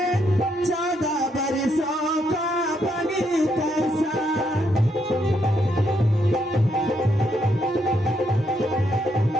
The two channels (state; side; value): normal; both; correlation 0.76